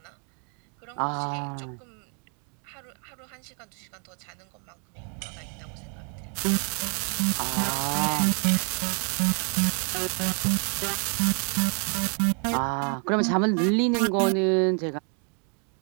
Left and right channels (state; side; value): quieter; left; 39.5 dB